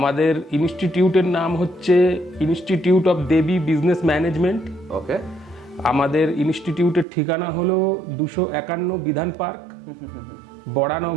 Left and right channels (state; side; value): drops out; left; at 7.1 s